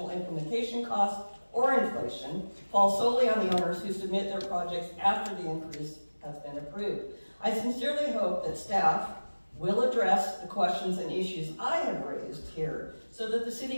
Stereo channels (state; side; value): inverted; both; correlation -1.00